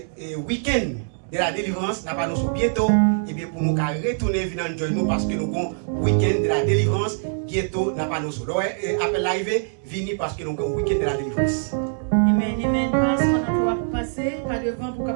week-end de la délivrance, nous allons annoncer bientôt, et bien pour nous retourner venir nous parce que nous avons un week-end de la délivrance, bientôt nous allons annoncer. Après l'arrivée, venez parce que nous avons un week-end de la délivrance. Amen. Parce qu'on a passé par devant pour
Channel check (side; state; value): left; silent; digital silence